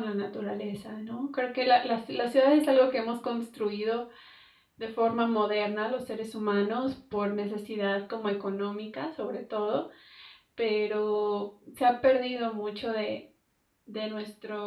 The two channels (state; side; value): identical; both; correlation 1.00